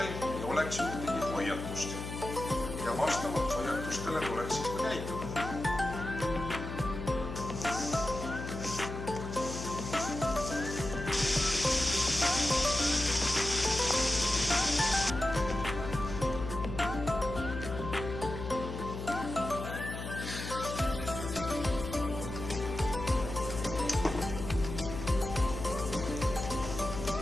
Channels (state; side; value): noise; left; hum, 7 dB below the sound